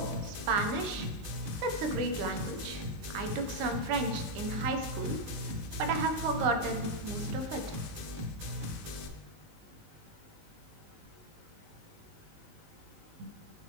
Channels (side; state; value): left; late; 19 ms